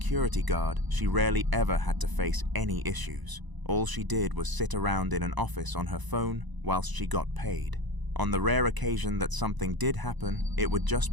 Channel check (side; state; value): left; late; 1.0 ms